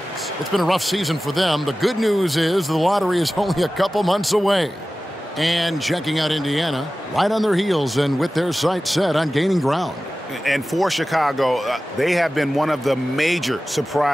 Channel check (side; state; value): both; normal; correlation 0.96